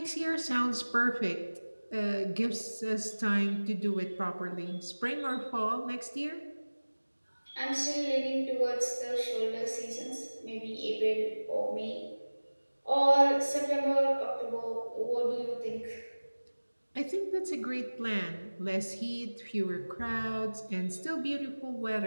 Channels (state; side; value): inverted; both; correlation -1.00